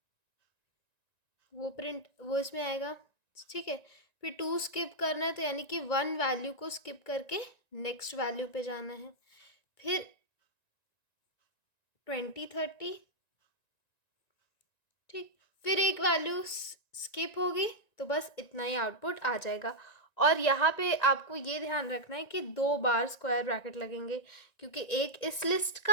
वो इसमें आएगा, ठीक है। फिर 2 स्किप करना है, तो यानी कि 1 वैल्यू को स्किप करके नेक्स्ट वैल्यू पे जाना है। फिर 20 30, ठीक। फिर एक वैल्यू स्किप होगी, तो बस इतना ही आउटपुट आ जाएगा। और यहाँ पे आपको ये ध्यान रखना है कि 2 बार स्क्वायर ब्रैकेट लगेंगे, क्योंकि एक इस लिस्ट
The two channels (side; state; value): right; late; 1.9 ms